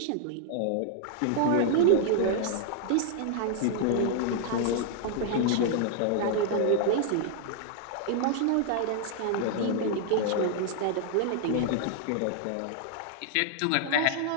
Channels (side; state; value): both; different; correlation 0.00